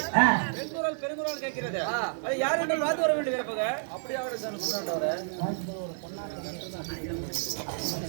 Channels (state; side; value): silent; left; digital silence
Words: பெருங்குரல் பெருங்குரல் கேட்கிறது. அது யார் என்று பார்த்து வர வேண்டும் இருப்பக. அப்படியே அவரு சொன்னாண்டவரே